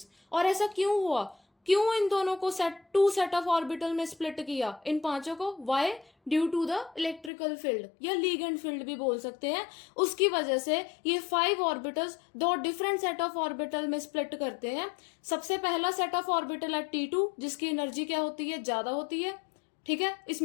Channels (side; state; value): right; drops out; at 7.3 s